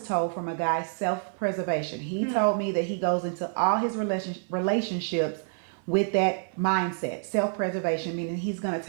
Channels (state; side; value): silent; left; 57 dB below the other